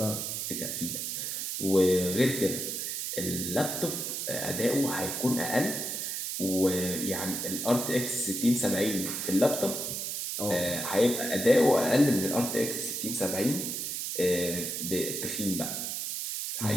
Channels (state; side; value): noise; right; hiss, 3 dB below the sound